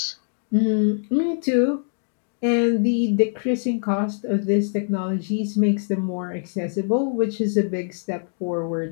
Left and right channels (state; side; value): silent; right; digital silence